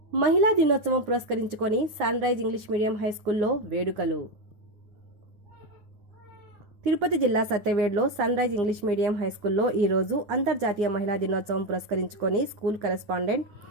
మహిళా దినోత్సవం పురస్కరించుకొని sunrise English medium high స్కూల్లో వేడుకలు. తిరుపతి జిల్లా సత్యవేడ్లో sunrise English medium high స్కూల్లో ఈ రోజు అంతర్జాతీయ మహిళా దినోత్సవం పురస్కరించుకొని school correspondent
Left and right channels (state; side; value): late; left; 9.6 ms